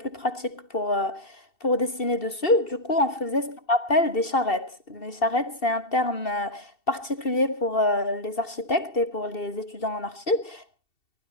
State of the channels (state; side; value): late; right; 2.7 ms